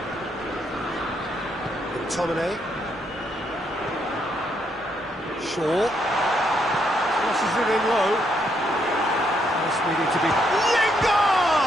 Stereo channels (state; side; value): normal; both; correlation 0.75